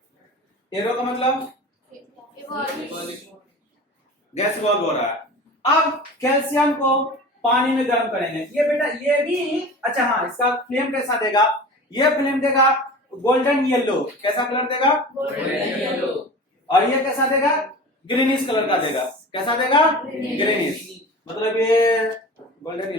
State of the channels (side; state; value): both; normal; correlation 0.36